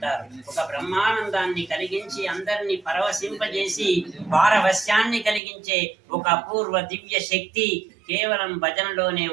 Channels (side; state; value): left; drops out; at 5.4 s